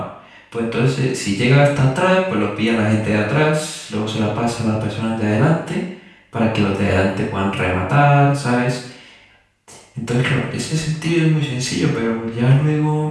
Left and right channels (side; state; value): both; identical; correlation 1.00